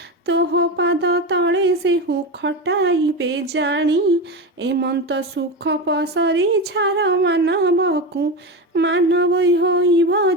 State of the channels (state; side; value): normal; both; correlation 0.19